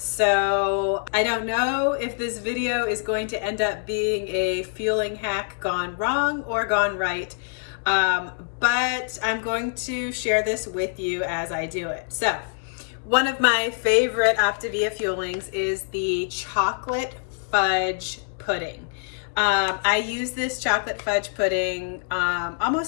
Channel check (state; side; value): silent; right; 62 dB below the other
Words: I don't know if this video is going to end up being a fueling hack gone wrong or gone right, but I'm going to share this with you as I do it. So one of my favorite OPTAVIA fuelings is the chocolate fudge pudding. I use this chocolate fudge pudding